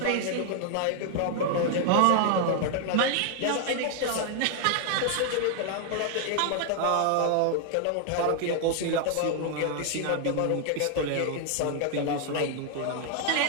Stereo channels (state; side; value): different; both; correlation 0.00